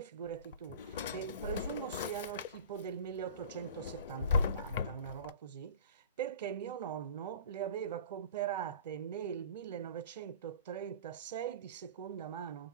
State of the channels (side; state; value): both; inverted; correlation -0.39